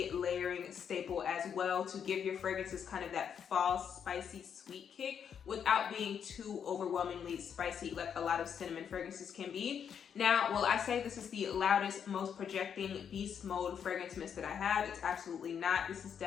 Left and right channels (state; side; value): quieter; right; 7.8 dB